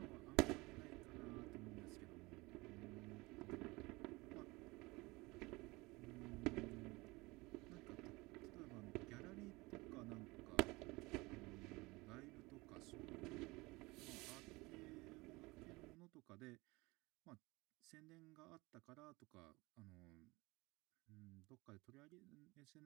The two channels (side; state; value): left; quieter; 23.1 dB